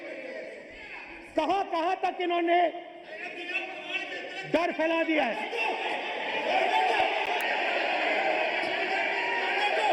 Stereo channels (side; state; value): both; identical; correlation 1.00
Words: कहां कहां तक इन्होंने डर फैला दिया है?